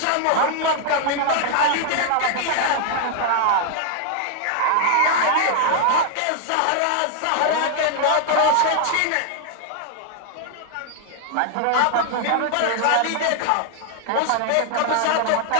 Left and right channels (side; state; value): both; different; correlation 0.00